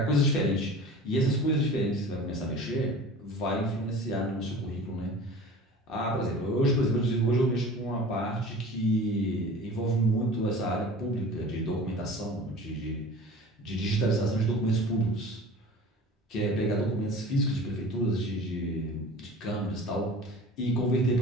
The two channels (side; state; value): both; normal; correlation 0.40